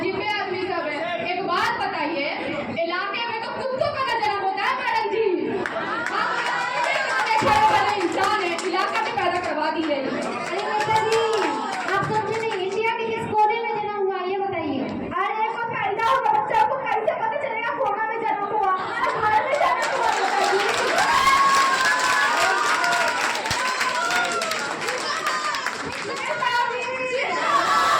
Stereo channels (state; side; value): identical; both; correlation 1.00